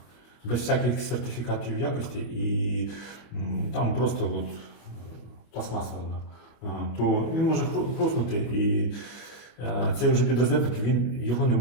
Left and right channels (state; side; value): late; right; 25 ms